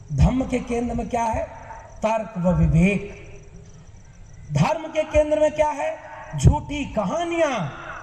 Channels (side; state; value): both; identical; correlation 1.00